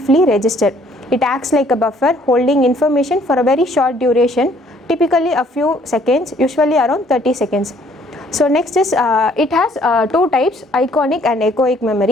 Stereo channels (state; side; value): normal; both; correlation 0.62